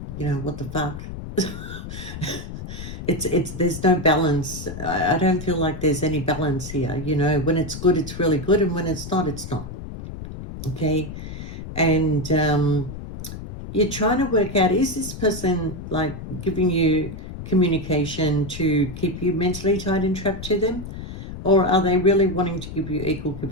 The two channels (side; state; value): left; noise; rumble, 10 dB below the sound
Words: you know, what the fuck? It's there's no balance. I don't feel like there's any balance here, you know. When it's good, it's really good, and when it's not, it's not. Okay? And you're trying to work out, is this person like giving you communication to keep you mentally tied and trapped to them? Or are they really wanting to give you equal